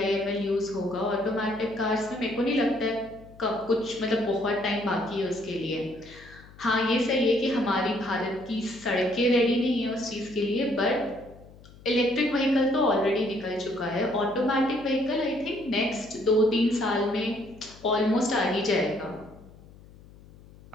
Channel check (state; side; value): noise; left; hum, 22 dB below the sound